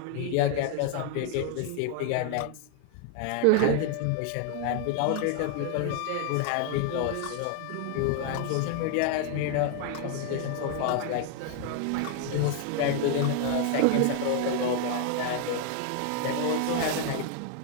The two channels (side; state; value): both; different; correlation 0.00